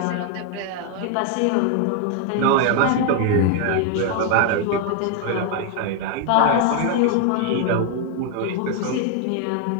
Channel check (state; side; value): different; both; correlation 0.01